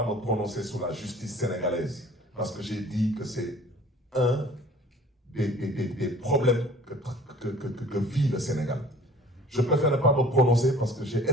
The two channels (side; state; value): both; normal; correlation 0.49